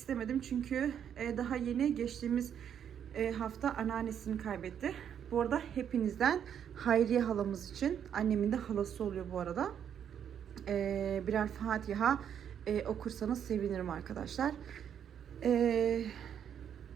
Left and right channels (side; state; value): left; quieter; 8.8 dB